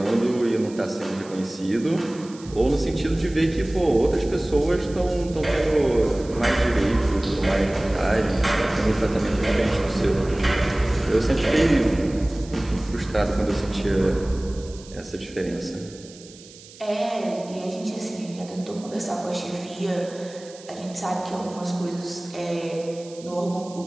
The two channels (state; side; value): noise; right; hiss, 20 dB below the sound